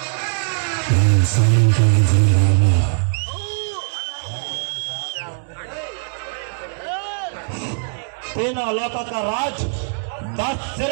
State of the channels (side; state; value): left; silent; digital silence